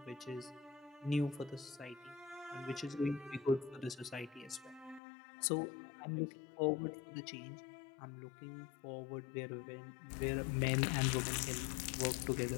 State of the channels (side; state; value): right; drops out; at 5.0 s